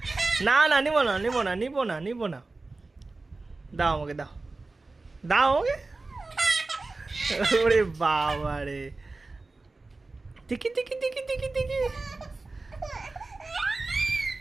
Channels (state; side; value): quieter; left; 3.4 dB